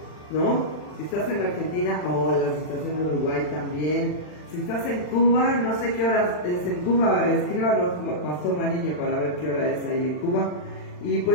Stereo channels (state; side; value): late; right; 40 ms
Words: ¿no? Si estás en Argentina, hola, si estás en Uruguay también. Si estás en Cuba, no sé qué hora es en Cuba, escríbanos, Pastor Mariño, para ver qué hora es ahí en Cuba. Y